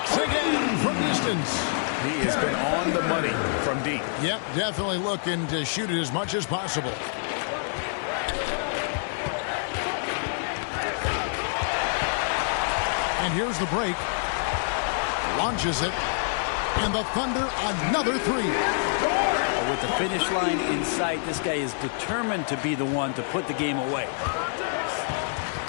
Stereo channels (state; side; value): silent; right; digital silence